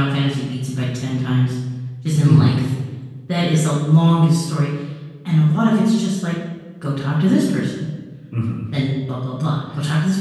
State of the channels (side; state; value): both; identical; correlation 1.00